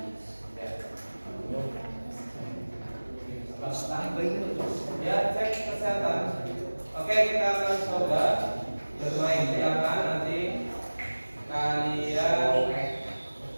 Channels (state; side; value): inverted; both; correlation -1.00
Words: Ya, cek kesehatan. Oke, kita akan coba bermain. Silakan nanti kalian